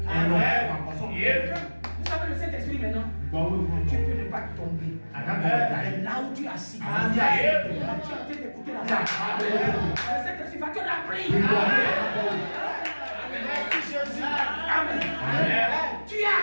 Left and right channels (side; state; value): both; inverted; correlation -1.00